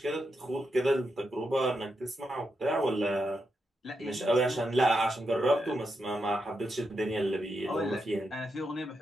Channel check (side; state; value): both; normal; correlation 0.84